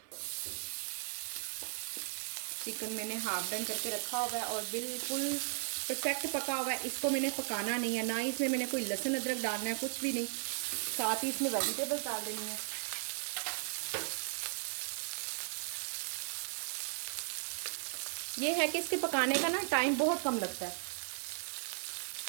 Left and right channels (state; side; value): silent; left; 53 dB below the other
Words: चिकन मैंने हाफ डन करके रखा हुआ है और बिल्कुल परफेक्ट पका हुआ है, इसको मैंने पकाना नहीं है, ना ही इसमें मैंने कोई लहसुन अदरक डालना है, कुछ भी नहीं। साथ ही इसमें वेजिटेबल्स डाल देनी है। ये है कि इसके पकाने का ना टाइम बहुत कम लगता है।